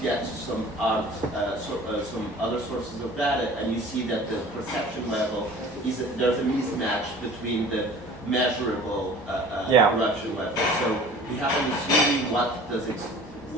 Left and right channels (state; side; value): normal; both; correlation 0.45